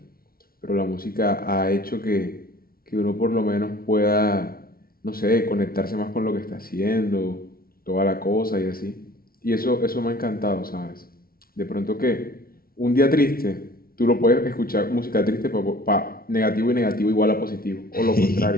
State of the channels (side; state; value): right; late; 0.43 ms